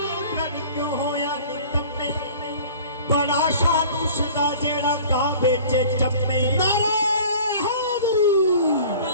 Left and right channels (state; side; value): inverted; both; correlation -0.45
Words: ਕਿਉਂ ਹੋਇਆ ਨੀ ਕੰਮੇ ਬੜਾ ਸ਼ਾਨ ਉਸਦਾ ਜਿਹੜਾ ਕਾਬੇ ਚ ਚੰਮੇ ਨਾਰੇ ਹਾਜ਼ਰੀ